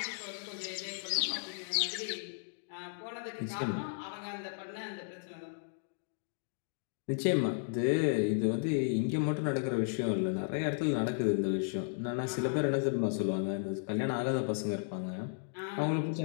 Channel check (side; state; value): right; silent; digital silence